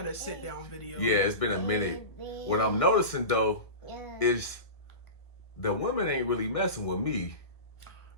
a sit down video. Yeah, it's been a minute. What I'm noticing though is the women ain't really messing with me.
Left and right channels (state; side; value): late; right; 1.6 ms